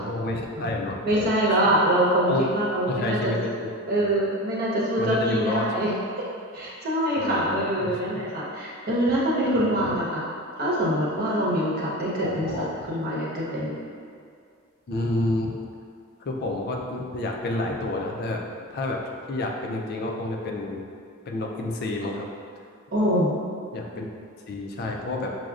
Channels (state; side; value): normal; both; correlation 0.30